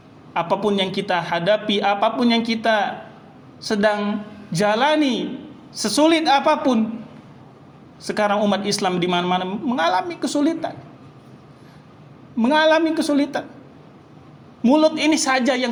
Apapun yang kita hadapi, apapun yang kita sedang jalani, sesulit apapun, sekarang umat Islam di mana-mana mengalami kesulitan. Mengalami kesulitan. Mulut ini saja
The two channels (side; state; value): both; identical; correlation 1.00